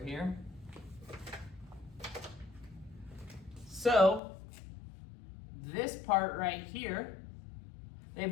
So this part right here, they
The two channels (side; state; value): right; drops out; at 4.2 s